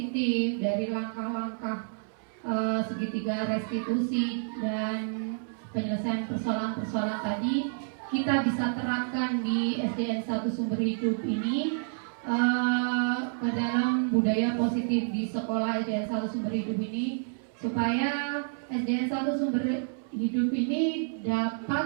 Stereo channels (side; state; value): left; silent; 58 dB below the other